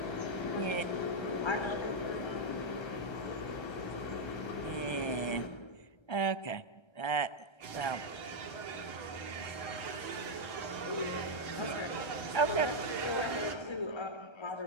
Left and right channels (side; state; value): right; late; 1.3 ms